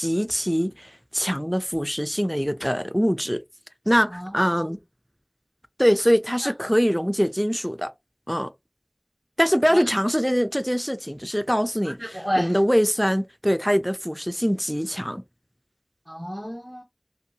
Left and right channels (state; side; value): identical; both; correlation 1.00